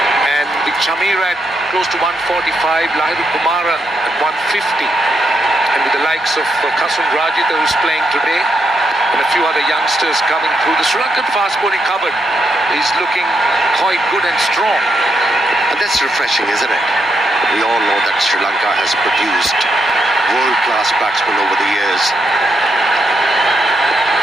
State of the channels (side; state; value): both; normal; correlation 0.80